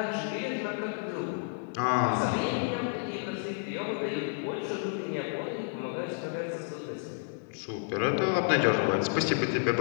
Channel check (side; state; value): right; silent; digital silence